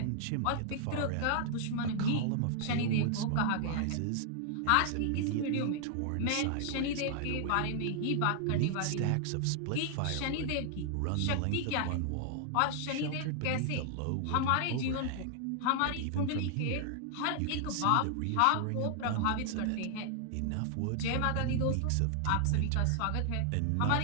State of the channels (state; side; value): different; both; correlation 0.00